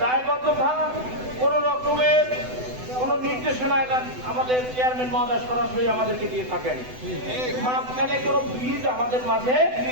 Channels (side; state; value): left; late; 7.9 ms